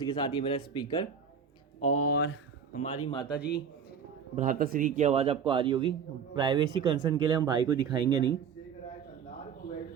के साथ ये मेरा स्पीकर और हमारी माता जी भ्राताश्री की आवाज़ आपको आ रही होगी। प्राइवेसी कंसर्न के लिए हम भाई को दिखाएंगे नहीं,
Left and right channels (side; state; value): left; quieter; 6.9 dB